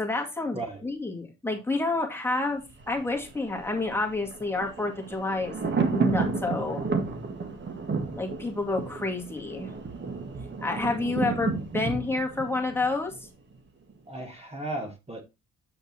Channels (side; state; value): both; normal; correlation 0.61